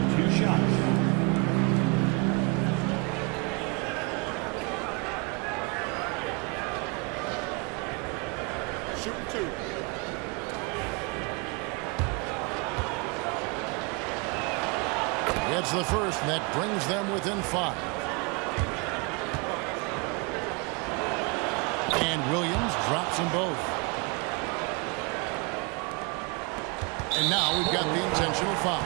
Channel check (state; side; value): quieter; left; 30.4 dB